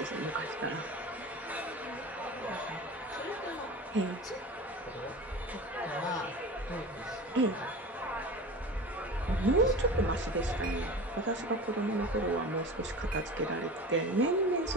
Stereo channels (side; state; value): both; normal; correlation 0.33